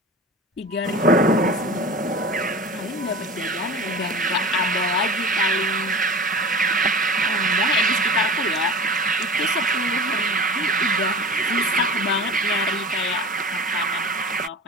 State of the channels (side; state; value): both; normal; correlation 0.35